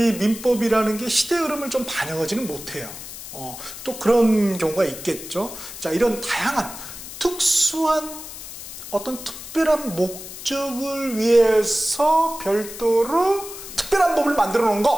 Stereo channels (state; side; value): noise; left; hiss, 12 dB below the sound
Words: 민법이라는 게 시대 흐름을 좀 반영하지는 못해요. 또 그런 경우가 있겠죠. 자, 이런 다양한 특수한 어떤 특별한 목적을 위해서 별도로 특별한 법을 만들어 놓은